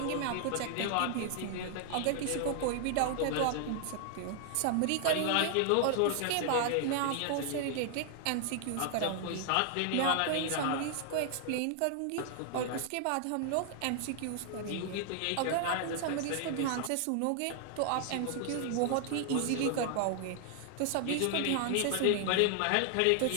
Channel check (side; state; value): both; different; correlation 0.00